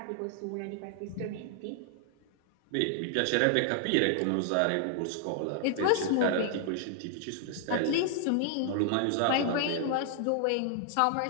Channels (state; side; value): different; both; correlation -0.01